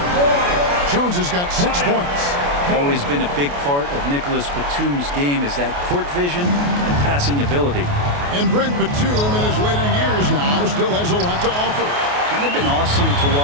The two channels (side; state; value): left; late; 28 ms